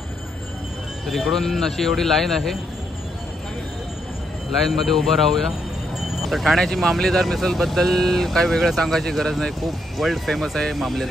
तर इकडून अशी एवढी लाईन आहे, लाईनमध्ये उभं राहूया. तर ठाण्याची मामलेदार मिसळबद्दल काही वेगळं सांगायची गरज नाही, खूप वर्ल्ड फेमस आहे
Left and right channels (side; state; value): both; normal; correlation 0.77